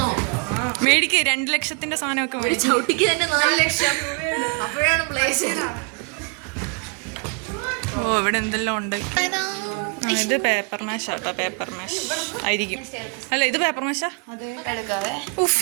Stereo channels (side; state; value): left; quieter; 35.2 dB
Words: മേടിക്ക് 2 ലക്ഷത്തിന്റെ സാധനമൊക്കെ ഒരു ചവിട്ടിക്ക് തന്നെ 4 ലക്ഷം അപ്പോഴാണ് പ്ലേസ്. ഓ ഇവിടെ എന്തെല്ലാം ഉണ്ട്. ഇത് പേപ്പർ മാഷ് ആട്ടോ, പേപ്പർ മാഷ് ആയിരിക്കും. അല്ല ഇത് പേപ്പർ മാഷാ. ഉഫ്